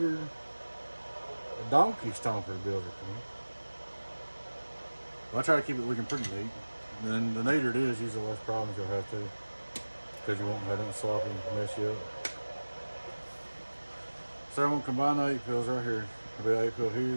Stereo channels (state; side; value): inverted; both; correlation -1.00